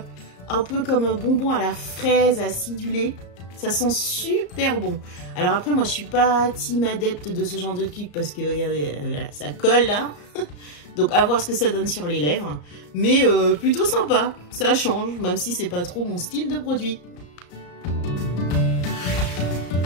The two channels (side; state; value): right; late; 34 ms